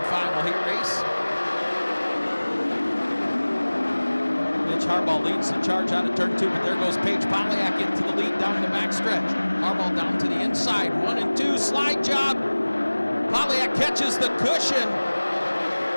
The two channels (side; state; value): both; inverted; correlation -1.00